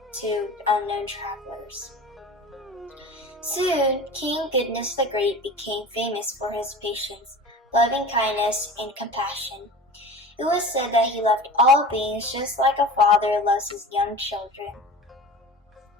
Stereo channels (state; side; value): normal; both; correlation 0.36